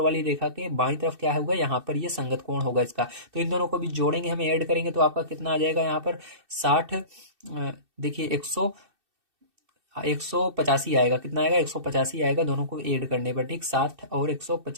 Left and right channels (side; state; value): left; late; 2.6 ms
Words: रेखा के बाईं तरफ क्या होगा, यहाँ पर ये संगत कोण होगा इसका। तो इन दोनों को भी जोड़ेंगे, हम ऐड करेंगे तो आपका कितना आ जाएगा यहाँ पर 60। देखिए 185 आएगा। कितना आएगा, 185 आएगा दोनों को ऐड करने पर। ठीक, 60 और